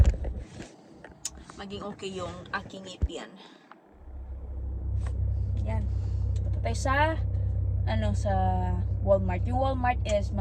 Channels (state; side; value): identical; both; correlation 1.00